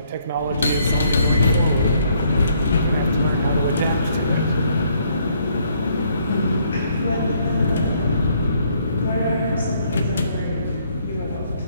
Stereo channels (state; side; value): inverted; both; correlation -0.68